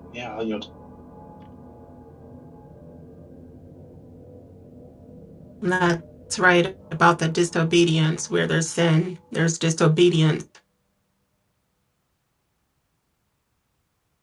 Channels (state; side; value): identical; both; correlation 1.00